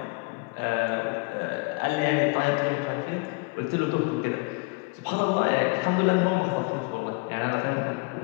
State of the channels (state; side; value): quieter; right; 28.7 dB